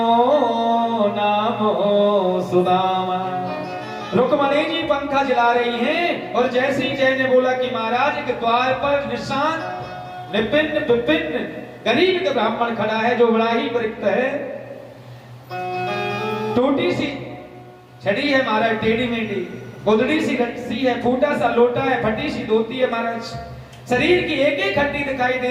नाम सुदामा। रुक्मणी जी पंखा जला रही हैं और जैसे ही जय ने बोला कि महाराज के द्वार पर निशान विपिन विपिन गरीब का ब्राह्मण खड़ा है जो बड़ा ही परिक्त है, टूटी सी छड़ी है महाराज, टेढ़ी मेढ़ी, गोदड़ी सी रस्सी है, फूटा सा लोटा है, फटी सी धोती है महाराज, शरीर की एक एक हड्डी दिखाई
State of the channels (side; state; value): both; identical; correlation 1.00